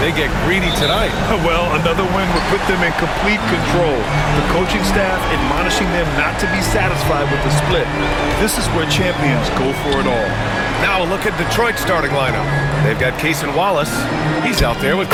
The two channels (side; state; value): both; identical; correlation 1.00